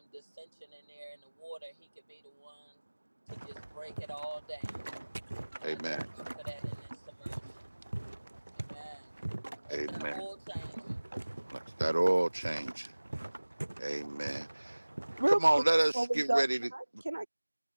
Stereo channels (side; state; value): both; inverted; correlation -1.00